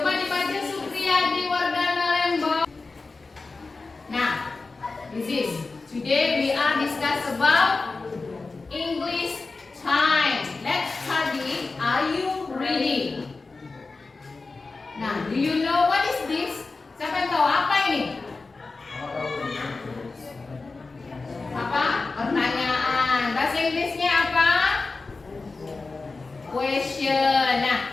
dibaca Supriyadi Wardana Lembong. Nah, this is today we are discuss about English time. Let's study. Are you ready? Nah, do you know what is this? Siapa yang tahu apa ini? Apa? Pertanyaan. Bahasa Inggrisnya apa? Question. Nah,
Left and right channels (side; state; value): right; quieter; 3.8 dB